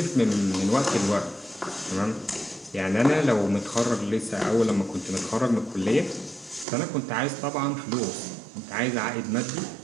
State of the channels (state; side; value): drops out; left; at 6.7 s